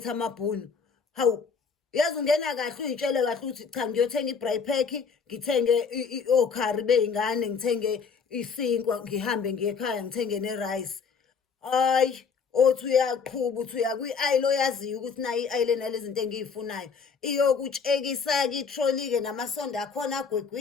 amabhunu. Hawu, yazi ungena kahle uy'tshele kahle ukuthi cha ngiyothenga i-braai pack, ngithenge okhari bey'ngane, ngithenge isinkwa, ngihambe ngiye ekhaya ngithenge ne-rice. Hayi, othi uyaqhuba uthi uya kwi-aisle oyaziyo ukuthi nayo i-aisle enalezi zinto engiy'funayo. Iyokutshekisa-ke itroli-ke namasondo akhona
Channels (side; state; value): right; quieter; 5.7 dB